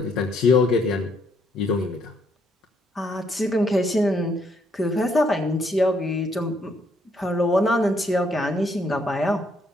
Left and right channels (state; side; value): normal; both; correlation 0.71